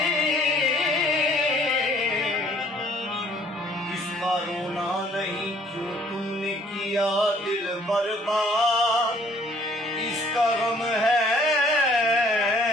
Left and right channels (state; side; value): normal; both; correlation 0.59